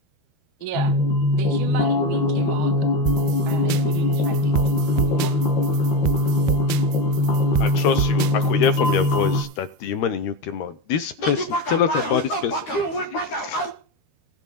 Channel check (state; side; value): late; right; 12 ms